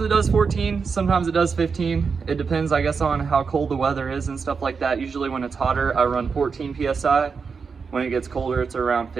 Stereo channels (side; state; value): left; quieter; 5.4 dB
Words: it does 14, sometimes it does 15. It depends, I guess, on how cold the weather is and stuff like that. Usually when it's hotter, I run 14 PSI. When it gets colder, it's around